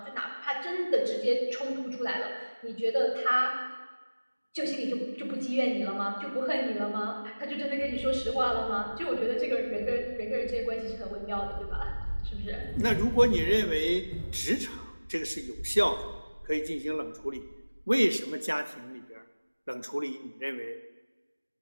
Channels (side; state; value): both; inverted; correlation -1.00